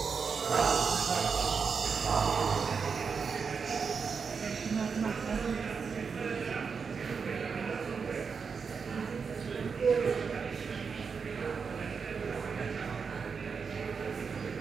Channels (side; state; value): left; quieter; 5.7 dB